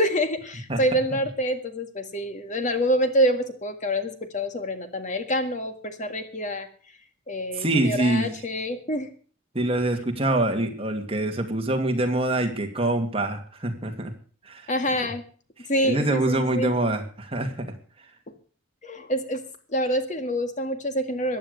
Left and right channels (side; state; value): both; normal; correlation 0.27